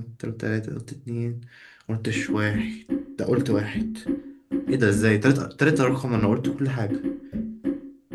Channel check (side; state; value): both; identical; correlation 1.00